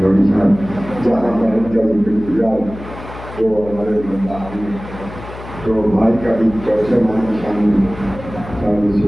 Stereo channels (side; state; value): left; noise; hum, 14 dB below the sound